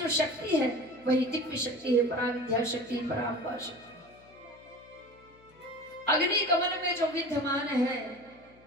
शक्ति है वही दिव्य शक्ति है, पराविद्या शक्ति, पराम्बा शक्ति। अग्नि कमल में जो विद्यमान है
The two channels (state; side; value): noise; left; hum, 27 dB below the sound